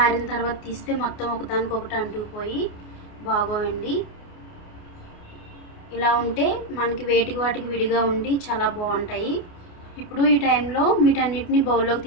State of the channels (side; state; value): right; late; 29 ms